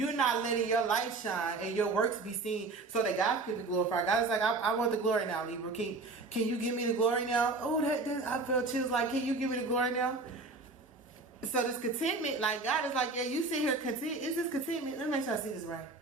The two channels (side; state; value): left; quieter; 3.6 dB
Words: not letting your light shine and your works be seen so that God can be glorified. God is like, I want the glory now, Libra. Can you give me the glory now? Oh, that I felt chills. Like, can you give me the glory now? So this contentment, like, God is like, yeah, you sit here content. Is this contentment? Let me make sure I see this right.